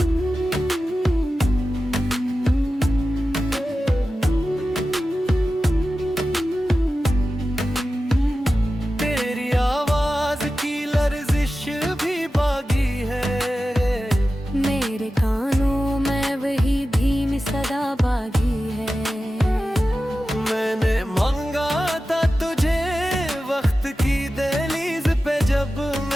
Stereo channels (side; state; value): both; normal; correlation 0.94